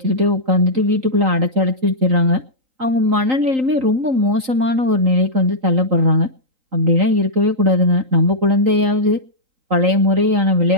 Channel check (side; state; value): left; late; 3.8 ms